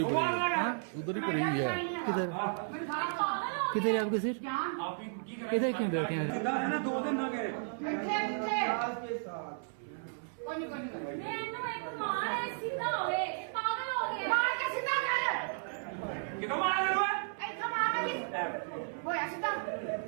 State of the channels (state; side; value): silent; left; 55 dB below the other